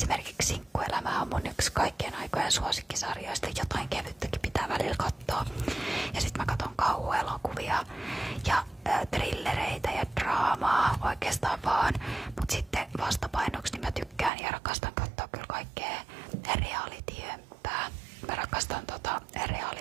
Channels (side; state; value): left; drops out; at 14.3 s